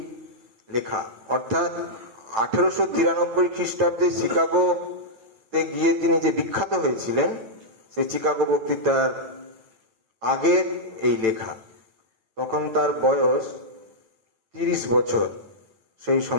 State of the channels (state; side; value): late; left; 9.0 ms